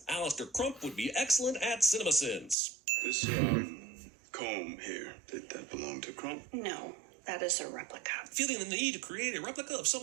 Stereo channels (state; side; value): drops out; left; at 2.6 s